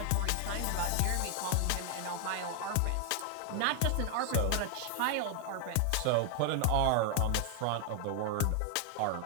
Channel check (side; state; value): both; different; correlation 0.00